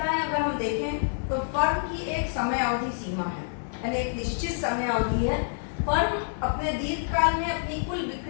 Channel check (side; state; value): right; silent; digital silence